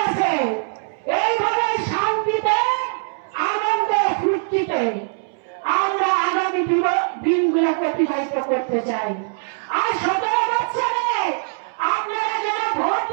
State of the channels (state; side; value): silent; left; 65 dB below the other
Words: আছে, এইভাবে শান্তিতে আনন্দে ফুর্তিতে আমরা আগামী দিনগুলোকে অতিবাহিত করতে চাই। আর 17 বছরে আপনারা যারা ভোট